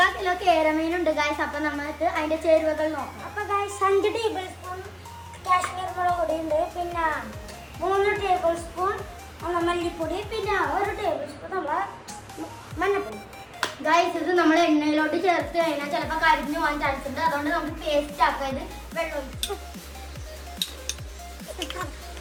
kilo കേരമീനുണ്ട് guys. അപ്പൊ നമുക്ക് അതിന്റെ ചേരുവകൾ നോക്കാം. അപ്പൊ ഗൈസ് 5 ടേബിൾ സ്പൂൺ കാശ്മീർ മുളക് പൊടി ഉണ്ട്, പിന്നെ 3 ടേബിൾ സ്പൂൺ മല്ലിപ്പൊടി, പിന്നെ 1 ടേബിൾ സ്പൂൺ നമ്മളെ മഞ്ഞപ്പൊടി. ഗൈസ് ഇത് നമ്മൾ എണ്ണയിലോട്ട് ചേർത്ത് കഴിഞ്ഞാൽ ചിലപ്പോൾ കരിഞ്ഞു പോകാൻ ചാൻസ് ഉണ്ട്. അതുകൊണ്ട് നമുക്ക് പേസ്റ്റ് ആക്കാം. ഇത് വെള്ളം ഒഴിച്ചു.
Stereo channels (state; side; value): identical; both; correlation 1.00